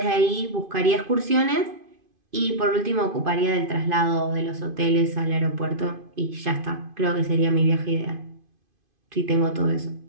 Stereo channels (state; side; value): late; left; 2.5 ms